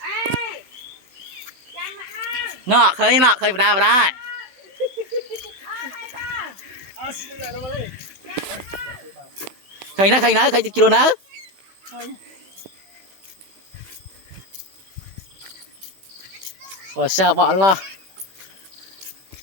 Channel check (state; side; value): late; left; 16 ms